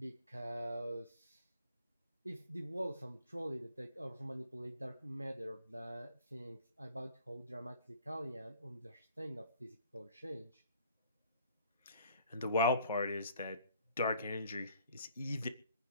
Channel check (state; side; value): inverted; both; correlation -0.56